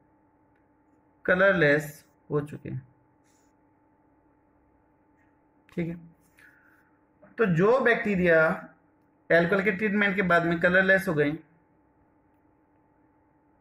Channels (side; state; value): both; identical; correlation 1.00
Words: कलरलेस हो चुके हैं, ठीक है। तो जो बैक्टीरिया एल्कोहल के ट्रीटमेंट के बाद में कलरलेस हो गए,